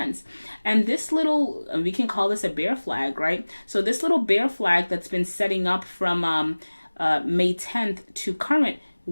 And this little, we can call this a bear flag, right? So this little bear flag that's been setting up from May 10th to current,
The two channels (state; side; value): inverted; both; correlation -1.00